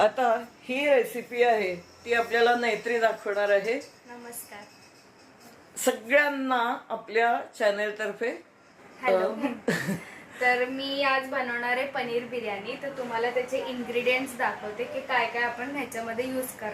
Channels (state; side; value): identical; both; correlation 1.00